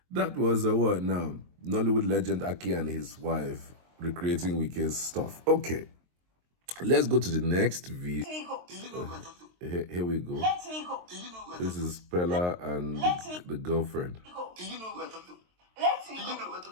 That was a word now. Nollywood legend Aki and his wife recreating Wike's stuff. Okay. Let's go to the next video. Here we go. Let me go. This is Peller and the girlfriend. Do you know who I talk to? Let me go. You know who I talk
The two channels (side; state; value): left; late; 23 ms